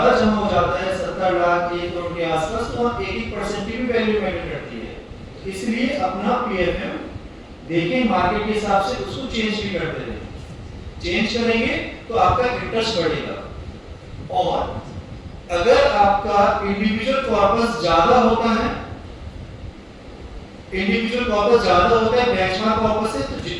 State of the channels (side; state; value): both; identical; correlation 1.00